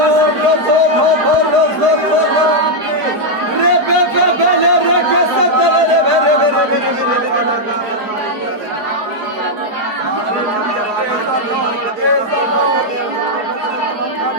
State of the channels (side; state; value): left; late; 4.6 ms